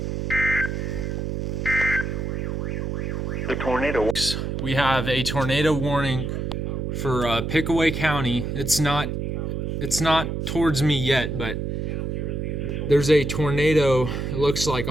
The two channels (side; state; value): right; noise; hum, 2 dB below the sound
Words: The tornado. We have a tornado warning for Pickaway County. It's not towards me yet, but there's a tornado, it looks like,